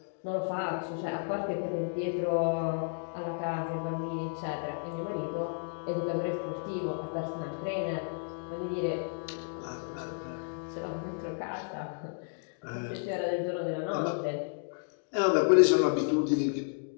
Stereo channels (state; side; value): silent; right; digital silence